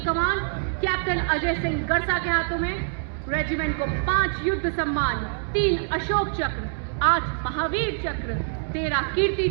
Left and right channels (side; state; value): left; silent; digital silence